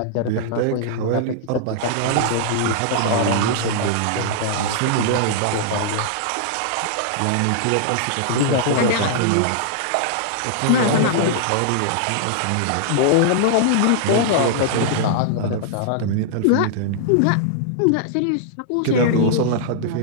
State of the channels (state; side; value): different; both; correlation -0.01